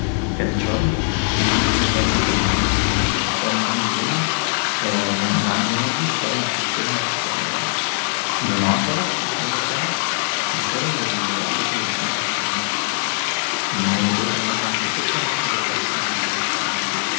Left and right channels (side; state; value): right; silent; digital silence